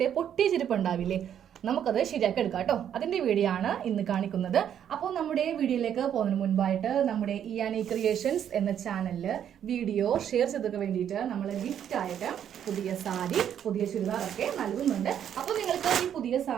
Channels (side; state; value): left; quieter; 9.4 dB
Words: പൊട്ടിയ ചെരുപ്പ് ഉണ്ടാവില്ലേ, നമുക്കത് ശരിയാക്കി എടുക്കാം കേട്ടോ. അതിന്റെ വീഡിയോ ആണ് ഇന്ന് കാണിക്കുന്നത്. അപ്പോൾ നമ്മുടെ വീഡിയോയിലേക്ക് പോകുന്നതിന് മുൻപായിട്ട് നമ്മുടെ ക്രിയേഷൻസ് എന്ന ചാനലില് വീഡിയോ ഷെയർ ചെയ്തൊക്കെ വേണ്ടിയിട്ട് നമ്മൾ ഗിഫ്റ്റ് ആയിട്ട് പുതിയ സാരി, പുതിയ ചുരിദാറൊക്കെ നൽകുന്നുണ്ട്. അപ്പോൾ നിങ്ങൾക്ക് ഈ പുതിയ